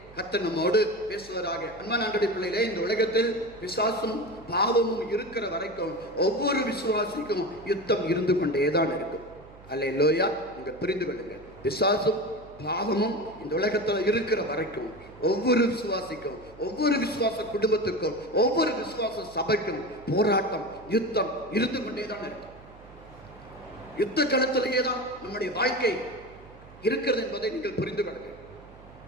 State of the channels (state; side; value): noise; right; hum, 21 dB below the sound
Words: கர்த்தர் நம்மோடு பேசுவதாக. அன்பான ஆண்டவருடைய பிள்ளைகளே, இந்த உலகத்தில் பிசாசும் பாவமும் இருக்கிற வரைக்கும் ஒவ்வொரு விசுவாசிக்கும் யுத்தம் இருந்து கொண்டேதான் இருக்கும். அல்லேலூயா. நீங்க புரிந்து கொள்ளுங்க. பிசாசும் பாவமும் இந்த உலகத்தில் இருக்கிற வரைக்கும் ஒவ்வொரு விசுவாசிக்கும், ஒவ்வொரு விசுவாச குடும்பத்துக்கும், ஒவ்வொரு விசுவாச சபைக்கும் போராட்டம், யுத்தம் இருந்து கொண்டேதான் இருக்கும். யுத்த களத்திலேயே தான் நம்முடைய வாழ்க்கை இருக்கிறது என்பதை நீங்கள் புரிந்து கொள்ளுங்க.